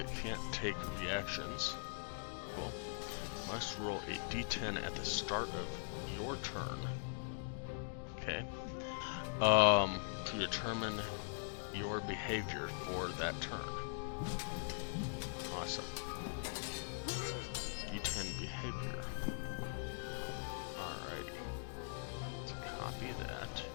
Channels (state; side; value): silent; right; digital silence